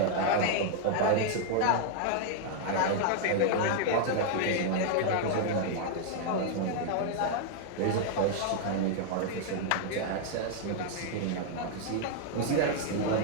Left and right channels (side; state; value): both; different; correlation 0.00